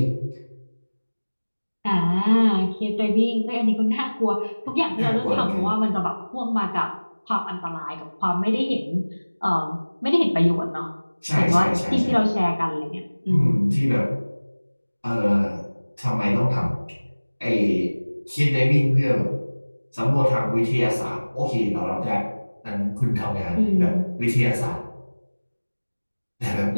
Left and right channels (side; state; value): both; inverted; correlation -1.00